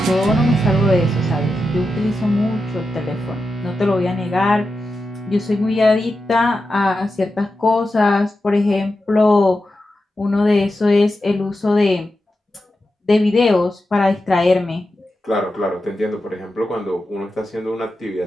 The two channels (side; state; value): both; normal; correlation 0.90